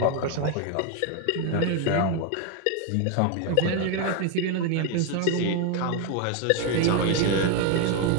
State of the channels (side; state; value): both; different; correlation 0.01